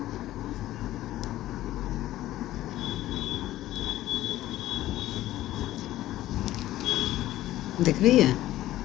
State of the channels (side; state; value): right; quieter; 14.7 dB